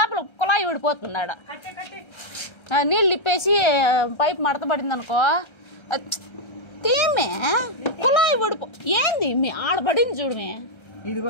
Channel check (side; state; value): right; late; 1.3 ms